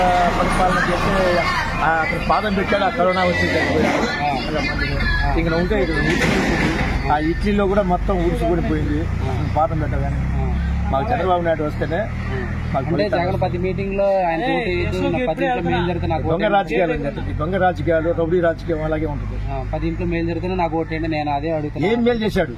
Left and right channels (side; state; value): both; identical; correlation 1.00